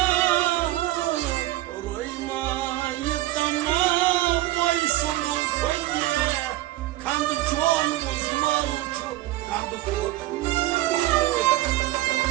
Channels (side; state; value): left; quieter; 16.2 dB